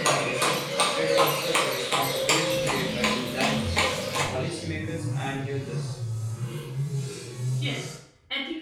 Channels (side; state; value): both; identical; correlation 1.00